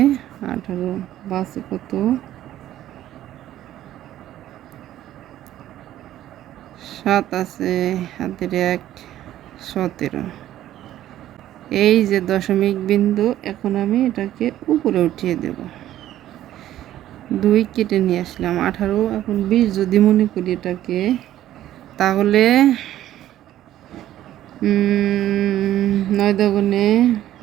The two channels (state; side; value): quieter; left; 12.9 dB